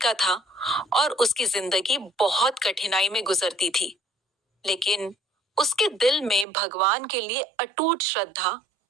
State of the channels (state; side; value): drops out; left; at 6.5 s